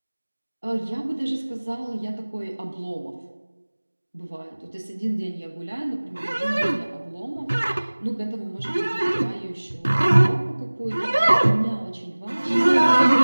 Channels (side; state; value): both; inverted; correlation -1.00